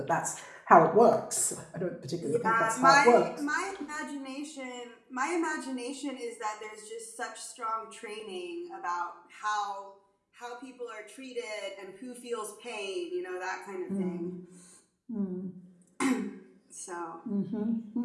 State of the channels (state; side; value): identical; both; correlation 1.00